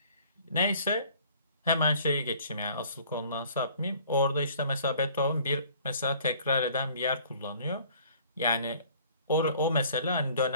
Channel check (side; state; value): both; inverted; correlation -0.54